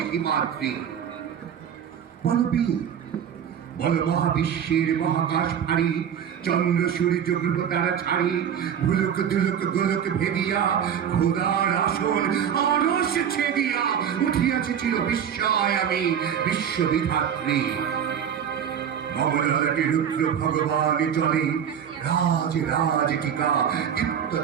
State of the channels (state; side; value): quieter; left; 8.5 dB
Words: হিমাদ্রি বল বীর বল মহাবিশ্বের মহাকাশ ফাড়ি চন্দ্র সূর্য গ্রহ তারা ছাড়ি ভুলক দুলক গোলক ভেদিয়া খোদার আসন আরশ ছেদিয়া উঠিয়াছে চির বিস্ময় আমি বিশ্ববিধাত্রী মমলাটি রুদ্র ভগবান জলে রাজ রাজ টিকা দীপ্ত